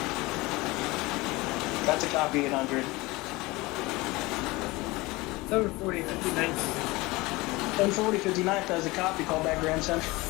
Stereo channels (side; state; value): right; quieter; 22.0 dB